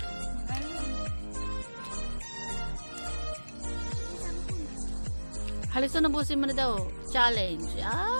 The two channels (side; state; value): both; inverted; correlation -1.00